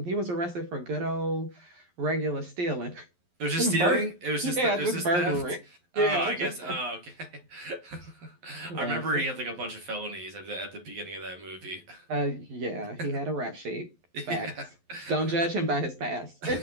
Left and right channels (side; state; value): left; late; 11 ms